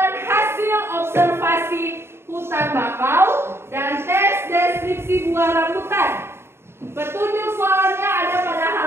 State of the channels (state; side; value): late; left; 0.12 ms